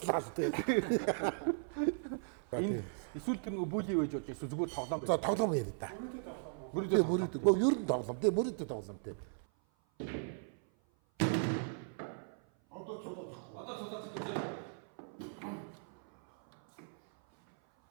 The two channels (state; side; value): silent; left; 53 dB below the other